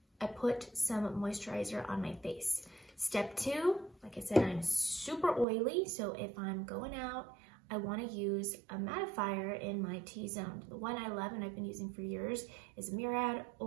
I put some moisturizer on my face. Step two, like I said, I'm super oily, so if I'm going out, I want to use a mattifier in my T-zone. The one I love and I've been using for years is Murad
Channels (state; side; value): drops out; left; at 5.5 s